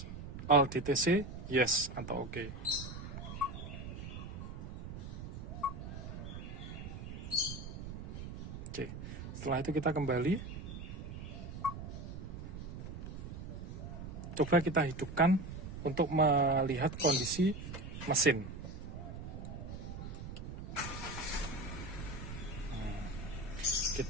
all DTC? Yes atau oke. Oke, setelah itu kita kembali. Coba kita hidupkan untuk melihat kondisi mesin.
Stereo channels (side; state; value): right; noise; rumble, 8 dB below the sound